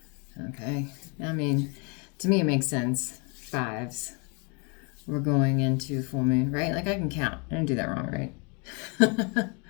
Okay, I mean, to me it makes sense. Fives. We're going into full moon, right? Like I can count. I didn't do that wrong, right?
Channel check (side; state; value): right; quieter; 33.4 dB